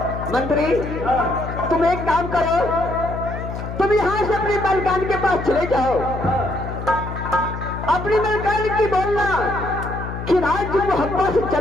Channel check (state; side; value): noise; left; hum, 7 dB below the sound